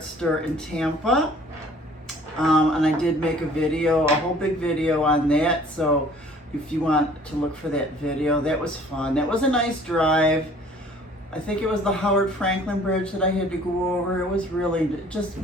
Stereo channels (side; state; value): both; normal; correlation 0.53